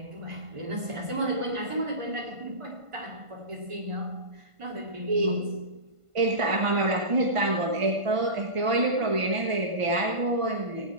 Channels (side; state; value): left; late; 1.5 ms